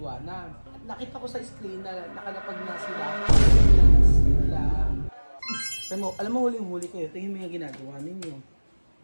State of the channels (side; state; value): both; inverted; correlation -1.00